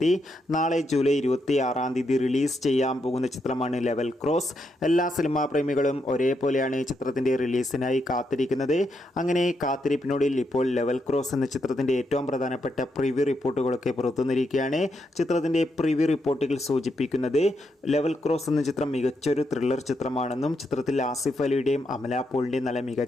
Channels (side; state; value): both; normal; correlation 0.80